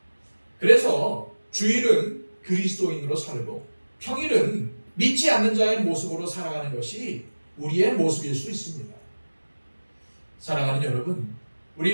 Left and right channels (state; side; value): inverted; both; correlation -1.00